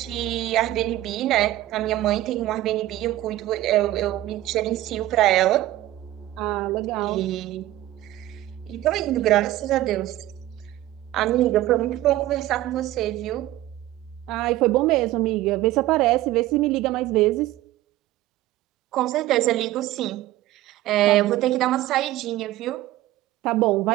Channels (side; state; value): left; quieter; 15.4 dB